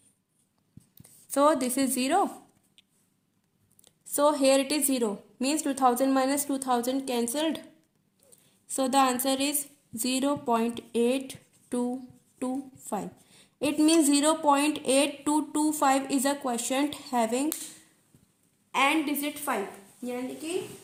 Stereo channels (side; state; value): both; identical; correlation 1.00